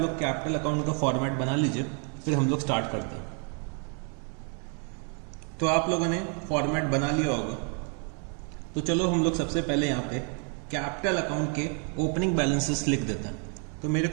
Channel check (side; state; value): left; quieter; 39.8 dB